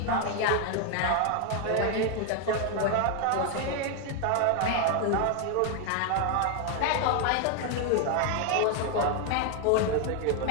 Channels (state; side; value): different; both; correlation 0.01